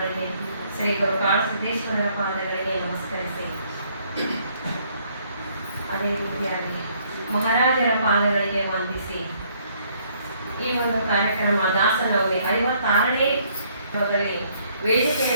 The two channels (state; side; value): inverted; both; correlation -0.66